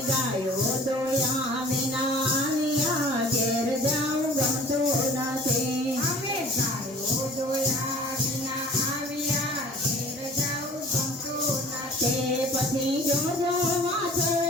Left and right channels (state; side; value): normal; both; correlation 0.47